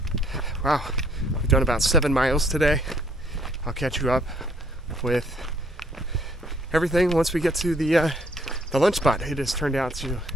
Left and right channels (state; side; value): normal; both; correlation 0.64